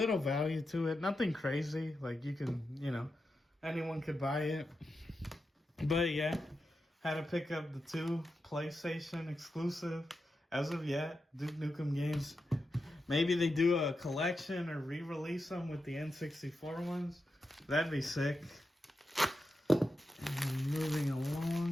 value to it. Nothing crazy. Like, you can, you know, anyone could buy it. But, yeah, had to pick up the 2 PlayStation exclusive. As of yet, Duke Nukem games. Maybe they do a collection or re-release them with the N64 ones. That'd be sick. And moving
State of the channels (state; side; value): normal; both; correlation 0.88